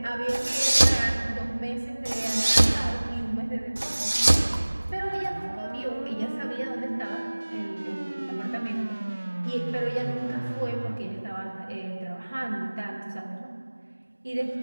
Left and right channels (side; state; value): both; inverted; correlation -1.00